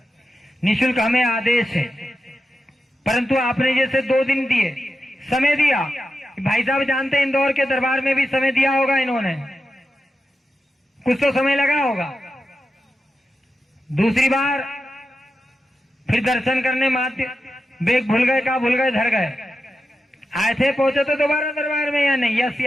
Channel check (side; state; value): both; normal; correlation 0.90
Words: निःशुल्क हमें आदेश है। परंतु आपने जैसे 2 दिन दिए, समय दिया, भाई साहब जानते हैं इंदौर के दरबार में भी समय दिया होगा इन्होंने, कुछ तो समय लगा होगा। दूसरी बार फिर दर्शन करने मात्र बैग भूल गए, कहा भूल गए, धर गए, आए थे, पहुंचे तो दोबारा दरबार में या नहीं, यस